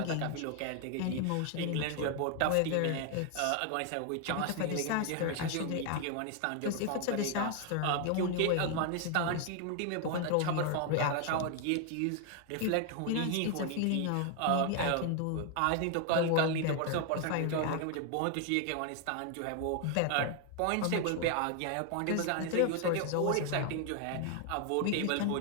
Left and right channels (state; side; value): different; both; correlation 0.00